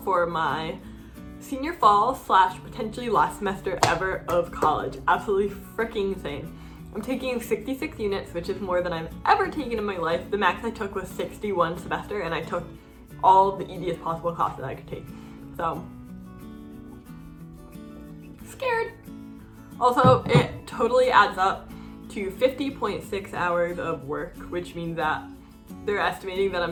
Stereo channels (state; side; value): identical; both; correlation 1.00